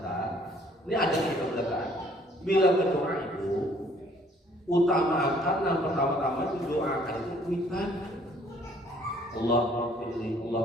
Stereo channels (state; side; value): normal; both; correlation 0.60